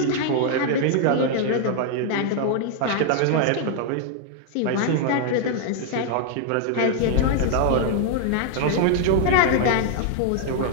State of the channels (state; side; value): different; both; correlation 0.00